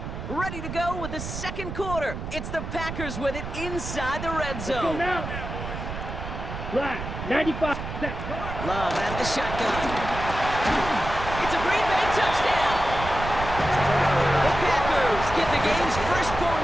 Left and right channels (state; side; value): noise; right; rumble, 7 dB below the sound